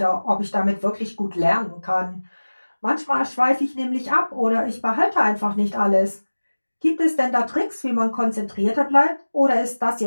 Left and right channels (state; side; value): inverted; both; correlation -1.00